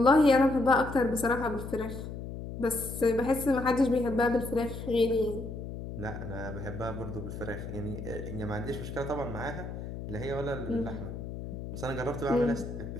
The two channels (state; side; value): noise; left; hum, 8 dB below the sound